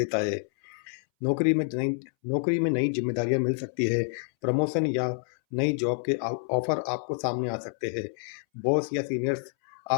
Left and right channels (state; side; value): silent; right; 59 dB below the other